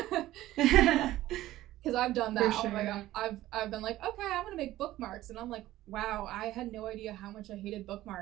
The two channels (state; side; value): quieter; left; 15.3 dB